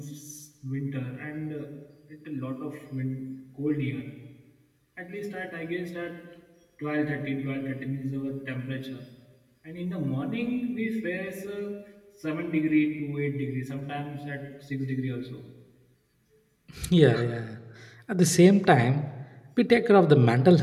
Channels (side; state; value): both; identical; correlation 1.00